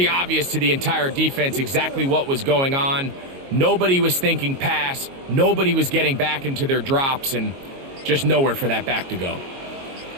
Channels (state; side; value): late; left; 22 ms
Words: obvious to the entire defense exactly what was going on. Nobody was thinking pass. Nobody was getting back into their drops, and just nowhere for that back to go.